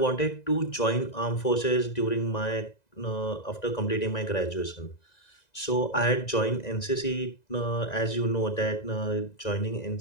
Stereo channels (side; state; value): right; late; 2.0 ms